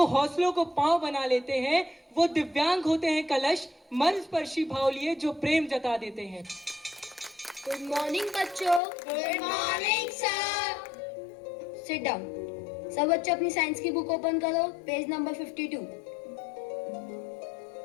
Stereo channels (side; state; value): right; drops out; at 8.8 s